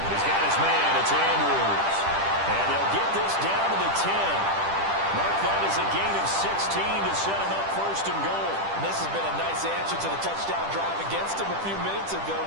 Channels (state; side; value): late; left; 10 ms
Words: He's got his man. It's Andrews. And they'll get this down to the 10. Mark that as a gain of 16 to set him up 1st and goal. And this has been a nice answer to the touchdown drive against them a few minutes ago